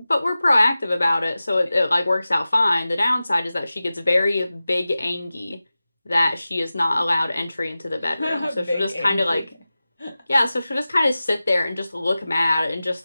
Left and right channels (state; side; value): inverted; both; correlation -0.96